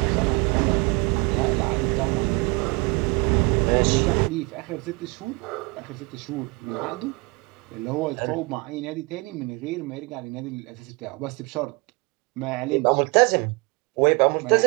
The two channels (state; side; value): quieter; left; 28.1 dB